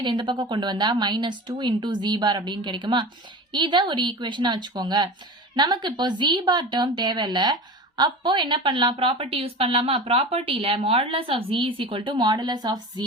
இந்த பக்கம் கொண்டு வந்தா minus 2 into z bar அப்படின்னு கிடைக்குமா? இத ஒரு ஈக்குவேஷனா வச்சுக்கோங்க. நமக்கு இப்போ z bar term தேவையில்ல. அப்போ என்ன பண்ணலாம்? ப்ராப்பர்ட்டி யூஸ் பண்ணலாமா? ப்ராப்பர்ட்டில modulus of z is equal to modulus of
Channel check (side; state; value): both; normal; correlation 0.31